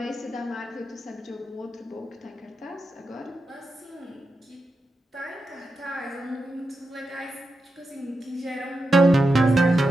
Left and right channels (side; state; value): both; normal; correlation 0.88